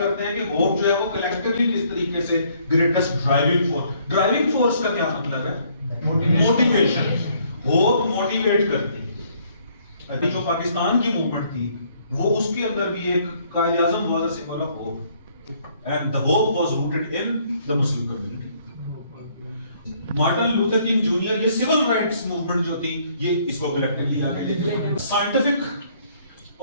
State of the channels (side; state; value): both; inverted; correlation -0.65